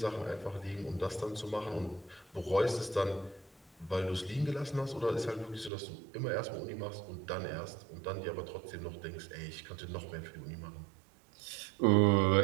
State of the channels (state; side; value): drops out; left; at 5.7 s